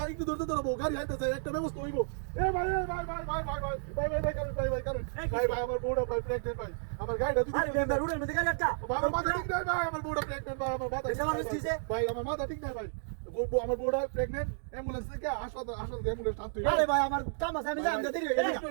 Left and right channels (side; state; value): left; silent; digital silence